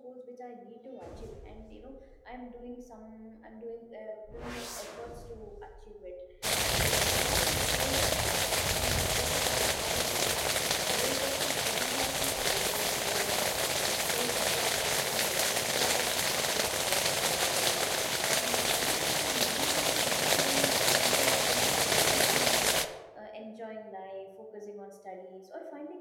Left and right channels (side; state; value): both; identical; correlation 1.00